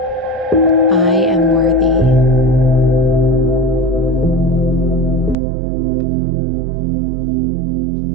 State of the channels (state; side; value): drops out; left; at 5.4 s